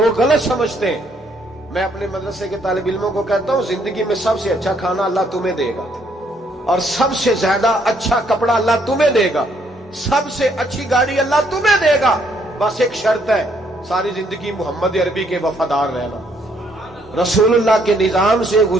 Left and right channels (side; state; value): both; normal; correlation 0.69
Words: गलत समझते हैं। मैं अपने मदरसे के तालिब इल्मों को कहता हूँ जिंदगी में सबसे अच्छा खाना अल्लाह तुम्हें देगा और सबसे ज्यादा अच्छा कपड़ा अल्लाह तुम्हें देगा, सबसे अच्छी गाड़ी अल्लाह तुम्हें देगा। बस एक शर्त है, सारी जिंदगी मोहम्मद अरबी के वफादार रहना, रसूलुल्लाह के निजाम से